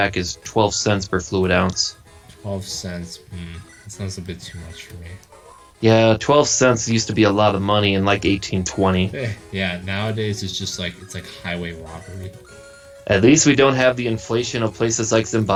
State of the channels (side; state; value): both; identical; correlation 1.00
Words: is 12 cents per fluid ounce. 12 cents. That sounds a bit too much for me. Yeah, 12 cents used to be a lot of money in like 1820. Yeah, nowadays it's just like it's like highway robbery. At least we don't have the inflation of places like